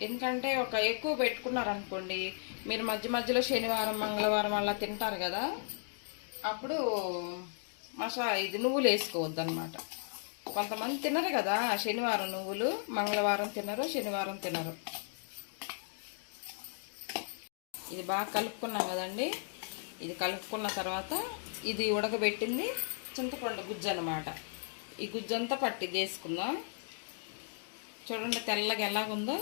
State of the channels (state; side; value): silent; right; digital silence